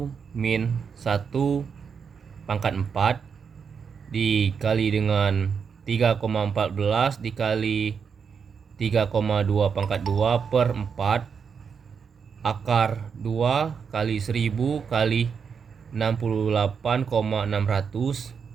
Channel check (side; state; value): left; quieter; 6.3 dB